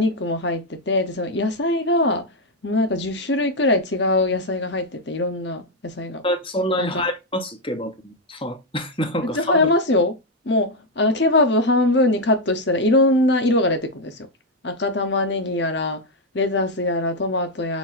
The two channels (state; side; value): normal; both; correlation 0.02